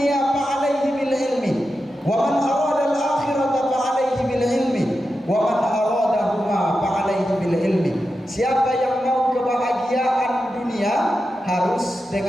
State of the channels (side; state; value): both; normal; correlation 0.90